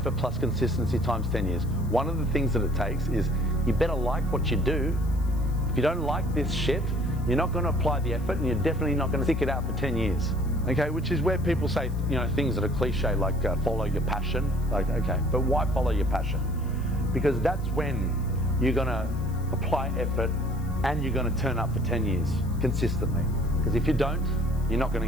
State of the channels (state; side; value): noise; left; hiss, 24 dB below the sound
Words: plus consistency times 10 years? One of the things that it takes is you better like what you do. If you don't like this shit, you're not going to apply the effort, and you're definitely not going to stick it out for 10 years. Okay, which is where people say, things that are cliche, like follow your passion. Like, okay, but why follow your passion? Because that's when you're going to apply effort and you're going to turn up for 10 years consistently. Because if you don't, you're not